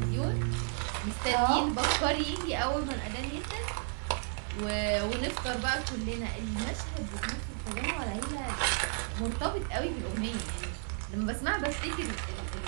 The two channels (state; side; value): silent; left; digital silence